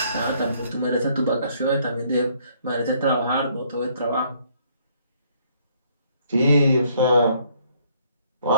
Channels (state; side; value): inverted; both; correlation -0.65